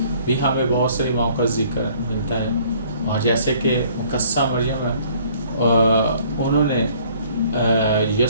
भी हमें बहुत सारी माओं का जिक्र मिलता है। और जैसे कि मुकस्सा मरियम है, उन्होंने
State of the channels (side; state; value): both; inverted; correlation -0.58